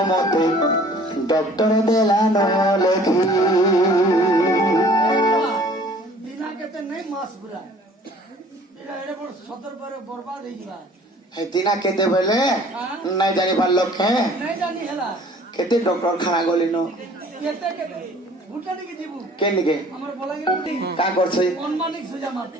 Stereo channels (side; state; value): both; normal; correlation 0.52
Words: মতে ডক্টর দেলা ন লেখি দিনা কেতে নাই মাস পুরা এটা বড় সতর পরে বরবাদ হই যাবা দিনা কেতে বলে নাই জানি পারলো কে নাই জানি হেলা কেতে ডক্টর খানা গলি ন কেতে কেতে ভুটা দিকে যাবো কে নিকে আমার বলাঙ্গীর উঠি কা করছে অনমানিক সুজা মারতে